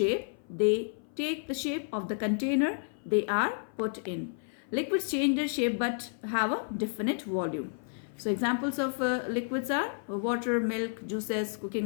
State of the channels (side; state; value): right; silent; 55 dB below the other